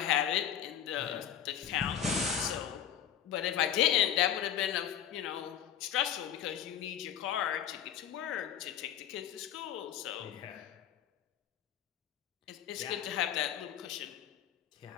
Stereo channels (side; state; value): right; quieter; 9.8 dB